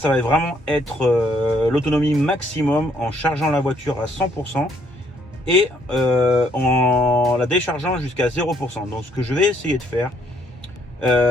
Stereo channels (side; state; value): both; normal; correlation 0.68